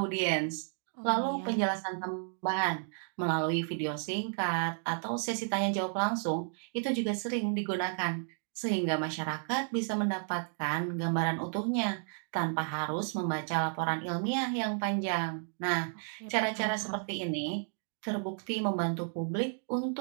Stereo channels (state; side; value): silent; left; 56 dB below the other